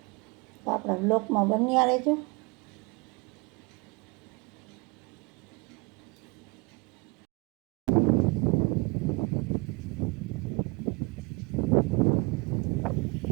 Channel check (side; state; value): left; quieter; 28.2 dB